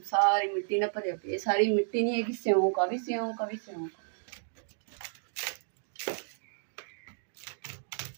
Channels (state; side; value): silent; left; digital silence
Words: मिट्टी ना भरिया पई। सारी मिट्टी नहीं है कि सिਉਂक आ भी सिਉਂक आ भी सिਉਂक।